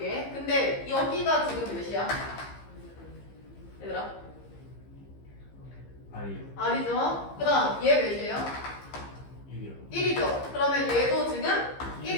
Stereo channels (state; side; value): late; right; 15 ms